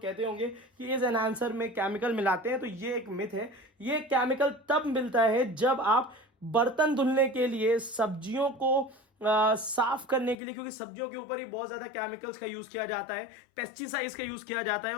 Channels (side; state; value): right; drops out; at 10.4 s